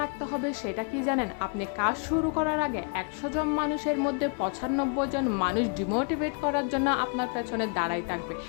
রাখতে হবে, সেটা কি জানেন? আপনি কাজ শুরু করার আগে ১০০ জন মানুষের মধ্যে ৯৫ জন মানুষ ডিমোটিভেট করার জন্য আপনার পেছনে দাঁড়াই থাকবে,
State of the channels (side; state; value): right; quieter; 38.4 dB